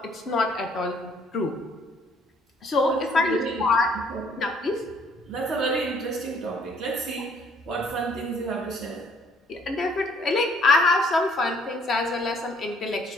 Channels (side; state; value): both; normal; correlation 0.62